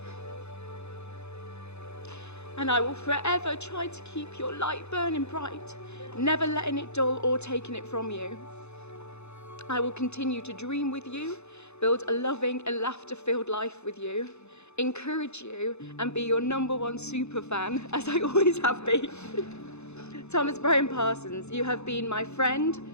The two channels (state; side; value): late; right; 0.81 ms